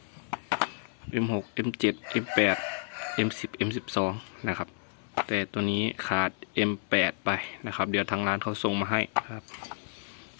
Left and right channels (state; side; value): silent; right; 57 dB below the other